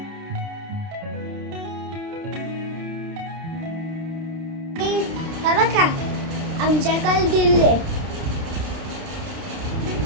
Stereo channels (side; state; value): left; late; 30 ms